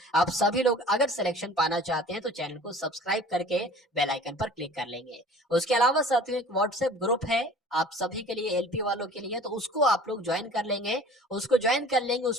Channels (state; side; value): normal; both; correlation 0.45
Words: आप सभी लोग अगर सिलेक्शन पाना चाहते हैं तो चैनल को सब्सक्राइब करके बेल आइकन पर क्लिक कर लेंगे। उसके अलावा साथियों एक व्हाट्सएप ग्रुप है आप सभी के लिए, एलपी वालों के लिए, तो उसको आप लोग ज्वाइन कर लेंगे। उसको ज्वाइन कर लेंगे,